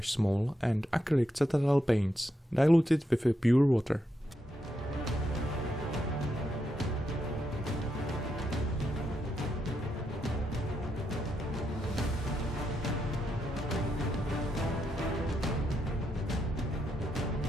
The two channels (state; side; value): normal; both; correlation 0.82